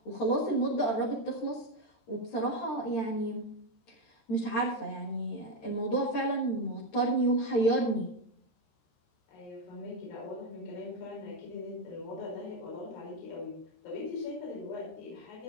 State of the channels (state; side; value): late; right; 13 ms